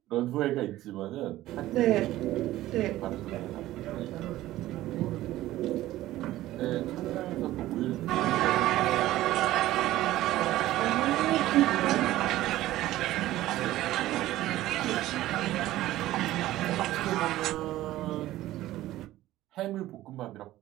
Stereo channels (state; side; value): quieter; left; 15.4 dB